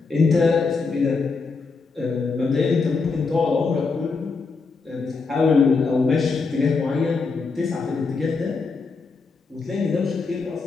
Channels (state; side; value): quieter; right; 4.4 dB